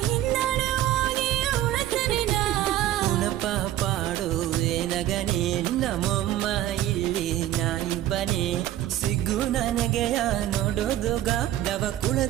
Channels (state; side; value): quieter; left; 13.2 dB